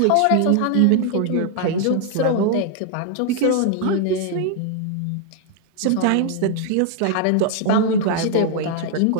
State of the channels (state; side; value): different; both; correlation 0.00